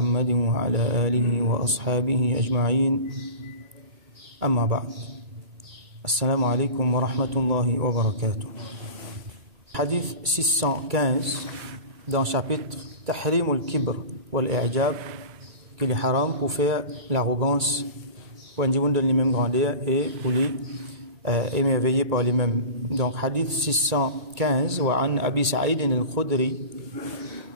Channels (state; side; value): late; left; 2.2 ms